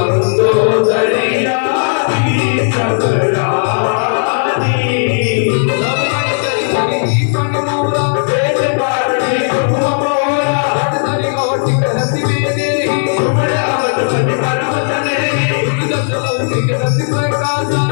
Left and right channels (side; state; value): right; silent; digital silence